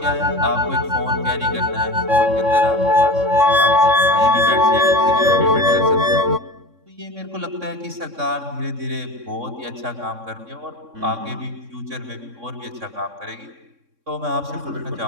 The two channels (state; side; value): late; left; 3.6 ms